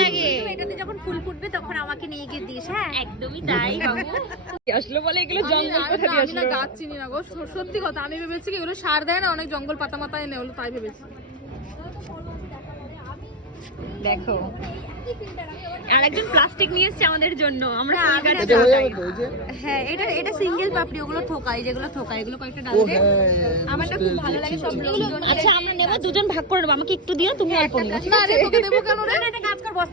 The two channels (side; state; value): both; normal; correlation 0.10